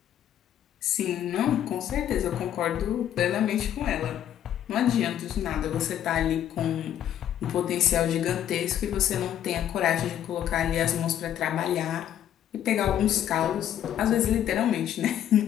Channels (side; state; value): right; quieter; 10.7 dB